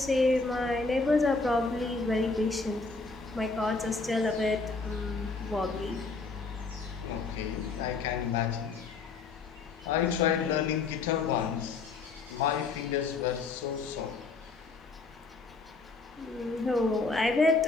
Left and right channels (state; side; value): quieter; right; 4.1 dB